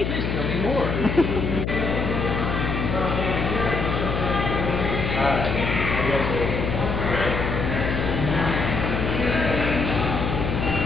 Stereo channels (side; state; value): left; noise; hum, 1 dB below the sound